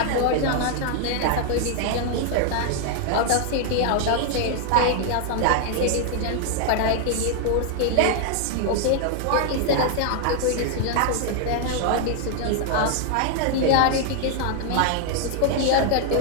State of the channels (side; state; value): both; different; correlation 0.00